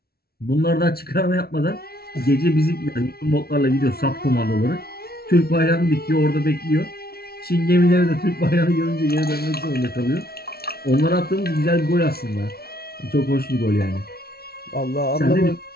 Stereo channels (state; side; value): late; right; 0.45 ms